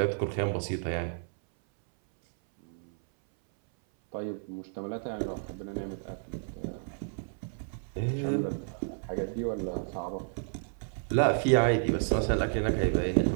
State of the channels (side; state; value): left; silent; 57 dB below the other